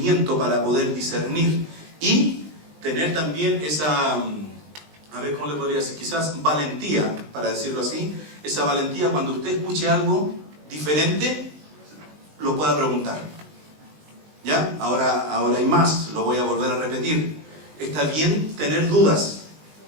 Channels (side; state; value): left; late; 20 ms